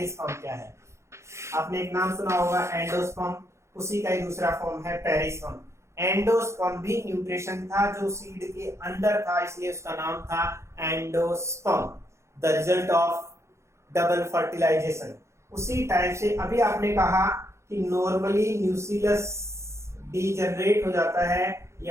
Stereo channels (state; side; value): late; left; 0.14 ms